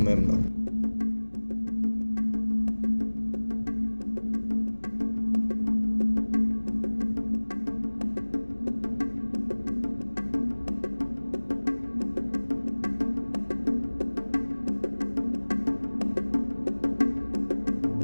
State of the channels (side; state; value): both; inverted; correlation -1.00